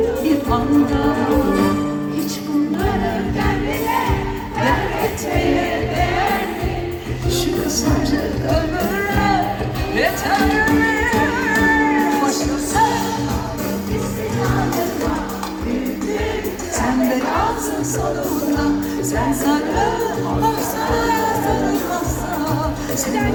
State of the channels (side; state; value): both; identical; correlation 1.00